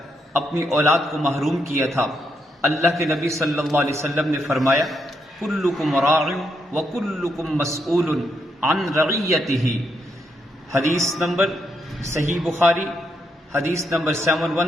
اپنی اولاد کو محروم کیا تھا۔ اللہ کے نبی صلی اللہ علیہ وسلم نے فرمایا، کلکم راع وکلکم مسئول عن رعیتہ، حدیث نمبر صحیح بخاری، حدیث نمبر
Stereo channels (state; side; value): normal; both; correlation 0.79